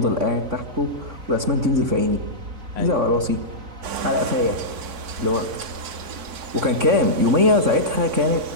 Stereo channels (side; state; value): left; late; 3.6 ms